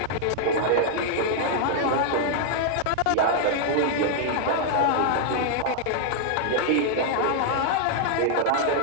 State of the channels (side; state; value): both; different; correlation 0.00